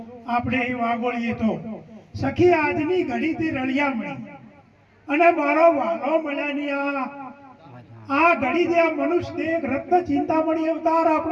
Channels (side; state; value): both; identical; correlation 1.00